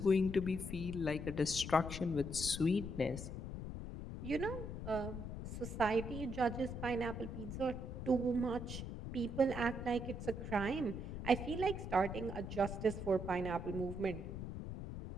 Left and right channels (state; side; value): noise; left; rumble, 6 dB below the sound